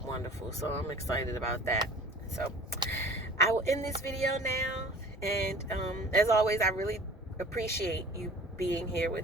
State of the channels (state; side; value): normal; both; correlation 0.45